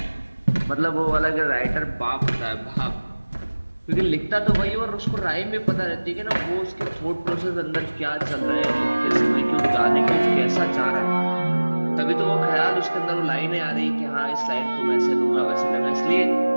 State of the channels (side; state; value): both; inverted; correlation -1.00